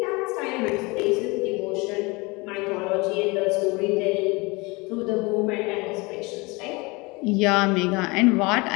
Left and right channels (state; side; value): quieter; right; 25.8 dB